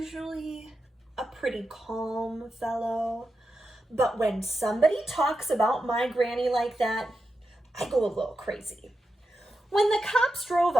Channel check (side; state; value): both; normal; correlation 0.88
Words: a pretty calm fellow, but when somebody talks about my granny like that, I go a little crazy. When the cops drove